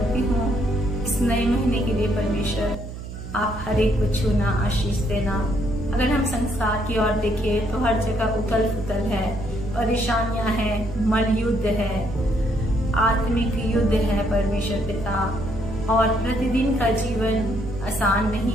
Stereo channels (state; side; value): noise; right; hum, 10 dB below the sound